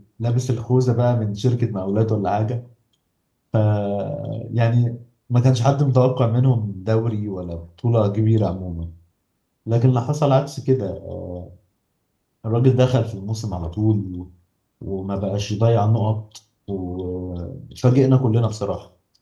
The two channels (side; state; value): both; identical; correlation 1.00